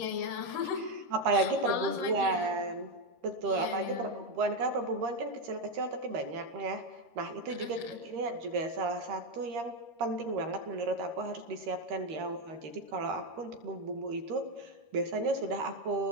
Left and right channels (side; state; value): left; late; 13 ms